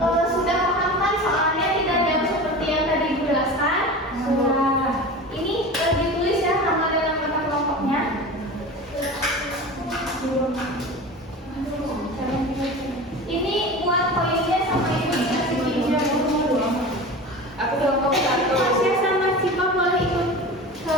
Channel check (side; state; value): both; normal; correlation 0.32